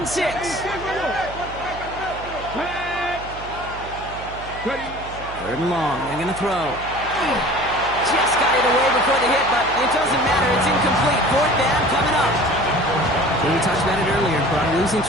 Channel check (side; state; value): right; noise; hum, 14 dB below the sound